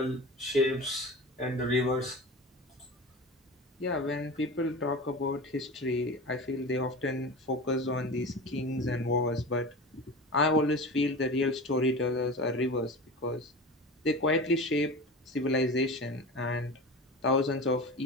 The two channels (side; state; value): both; normal; correlation 0.31